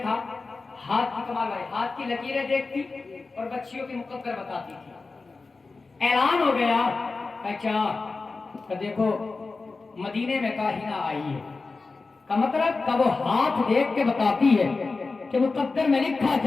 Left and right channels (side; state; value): right; quieter; 3.9 dB